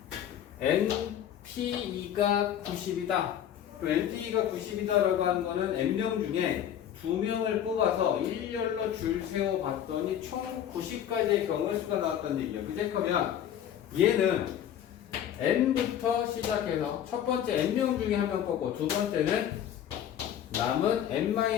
NPE가 90이다. 그럼 NPE가 90이다라고 하는 거는 N명 중에 2명을 뽑아서 일렬로 줄 세워 봤더니 총 90가지의 경우의 수가 나왔던 얘기야. 그제? 그러면 얘는 N부터 시작해서 첫 번째 N명 중에 한 명 뽑고 두 번째는 남은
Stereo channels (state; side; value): quieter; right; 10.2 dB